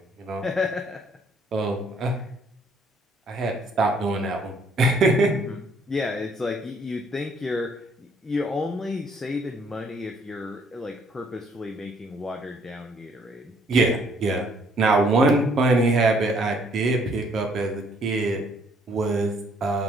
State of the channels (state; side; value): normal; both; correlation 0.64